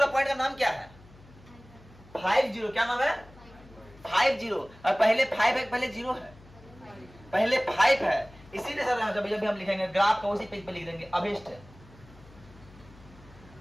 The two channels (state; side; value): noise; left; hum, 23 dB below the sound